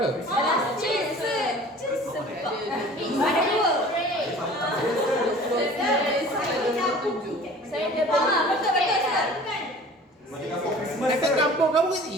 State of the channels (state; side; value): normal; both; correlation 0.45